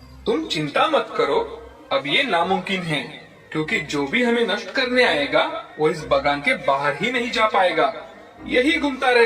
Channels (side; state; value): both; identical; correlation 1.00